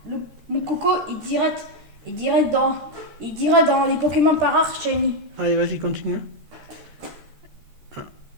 il dirait dans les Pokémon par rare shiny. Allez, vas-y, continue. Ah,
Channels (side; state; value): left; late; 13 ms